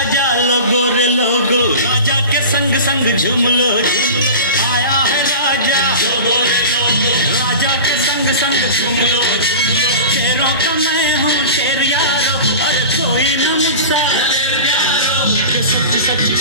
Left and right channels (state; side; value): inverted; both; correlation -0.33